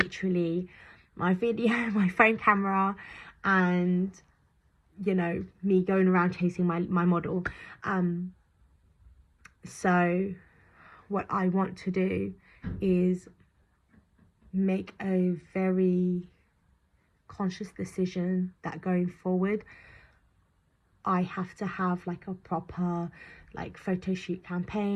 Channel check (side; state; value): both; identical; correlation 1.00